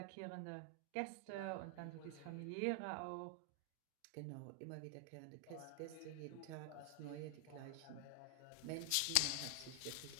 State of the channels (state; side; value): different; both; correlation 0.00